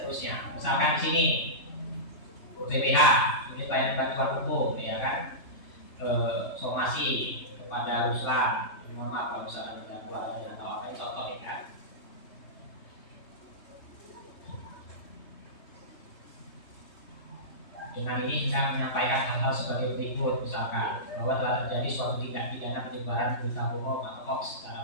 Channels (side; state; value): right; late; 3.3 ms